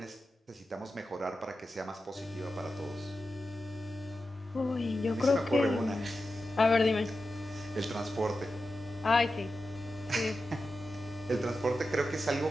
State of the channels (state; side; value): normal; both; correlation 0.91